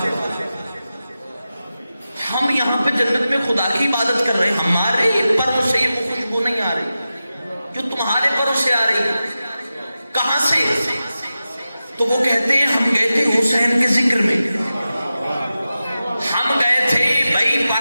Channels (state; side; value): inverted; both; correlation -0.93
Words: ہم یہاں پہ جنت میں خدا کی عبادت کر رہے ہیں، ہمارے پروں سے یہ خوشبو نہیں آ رہی جو تمہارے پروں سے آ رہی ہے. کہاں سے؟ تو وہ کہتے ہیں ہم گئے تھے حسین کے ذکر میں. ہم گئے تھے بھائی